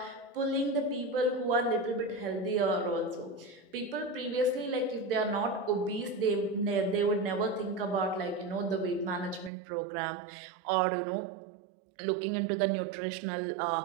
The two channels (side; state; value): left; drops out; at 9.5 s